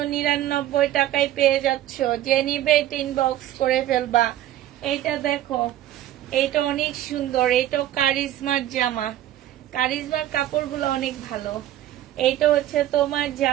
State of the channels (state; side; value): quieter; left; 13.0 dB